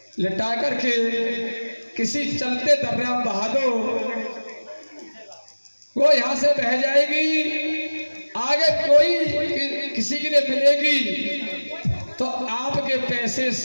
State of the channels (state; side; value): inverted; both; correlation -1.00